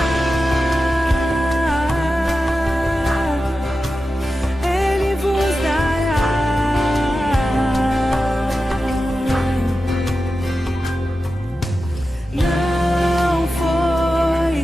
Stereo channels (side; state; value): both; normal; correlation 0.92